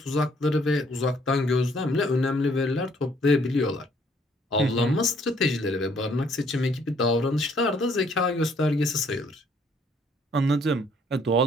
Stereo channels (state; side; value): normal; both; correlation 0.64